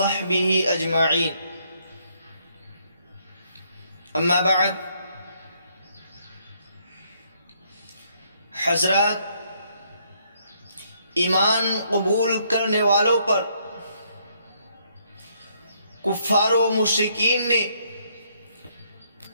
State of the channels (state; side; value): inverted; both; correlation -0.70